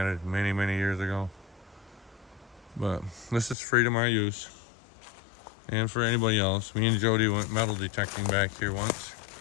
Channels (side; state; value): right; drops out; at 3.6 s